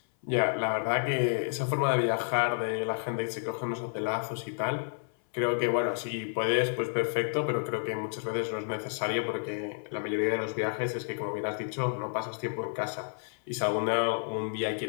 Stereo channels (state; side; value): silent; right; 57 dB below the other